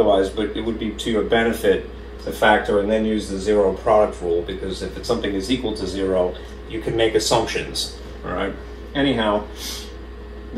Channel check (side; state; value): both; identical; correlation 1.00